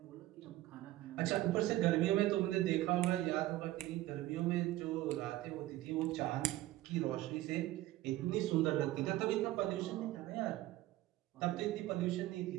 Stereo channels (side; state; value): left; quieter; 16.2 dB